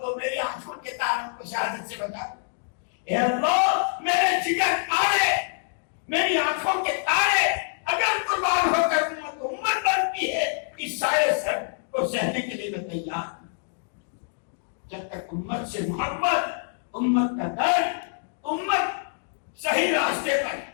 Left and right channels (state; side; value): silent; right; digital silence